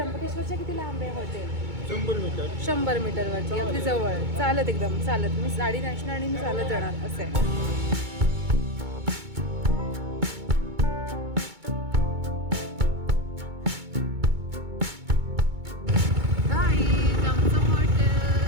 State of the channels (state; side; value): late; left; 2.2 ms